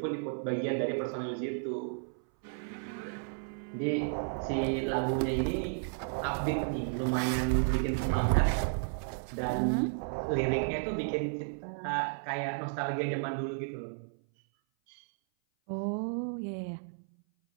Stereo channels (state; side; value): silent; left; 56 dB below the other